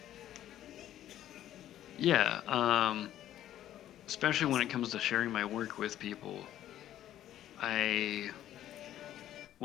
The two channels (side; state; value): right; quieter; 12.2 dB